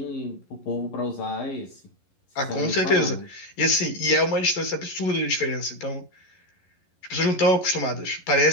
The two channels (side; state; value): right; late; 11 ms